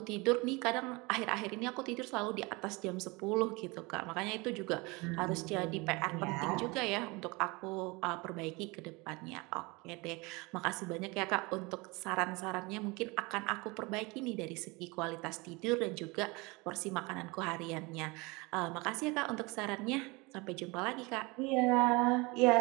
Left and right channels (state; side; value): quieter; left; 25.6 dB